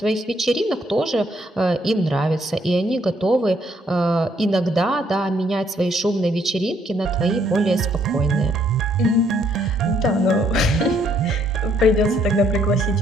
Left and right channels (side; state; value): both; normal; correlation 0.69